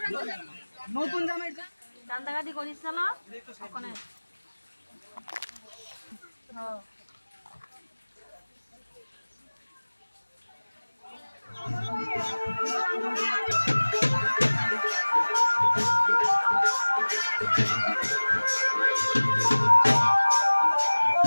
নতুন জামাই কান্দাকাটি করিস না ওখানে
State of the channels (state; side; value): inverted; both; correlation -1.00